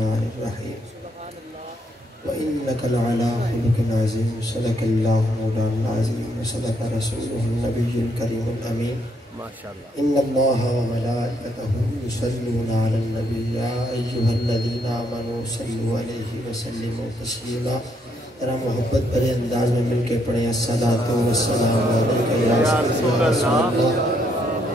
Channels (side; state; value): both; normal; correlation 0.73